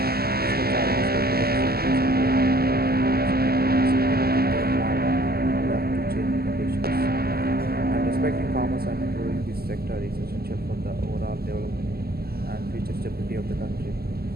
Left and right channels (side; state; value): left; late; 0.45 ms